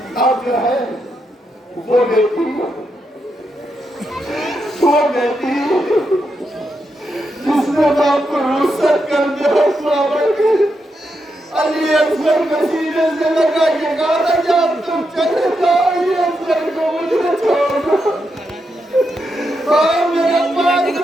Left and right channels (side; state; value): both; normal; correlation 0.83